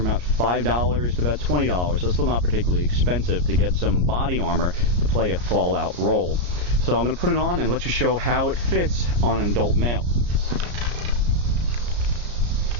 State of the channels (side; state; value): left; late; 34 ms